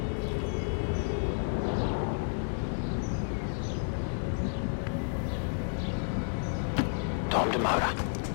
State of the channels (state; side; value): silent; right; digital silence